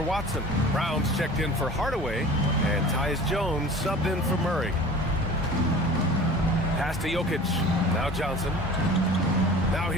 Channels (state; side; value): normal; both; correlation 0.41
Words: Watson. Brown's checked in for Hardaway. And Tyus Jones subbed in for Murray. Pass to Jokic. Now Johnson. Now